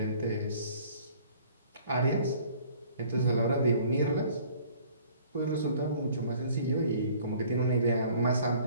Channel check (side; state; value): both; inverted; correlation -0.53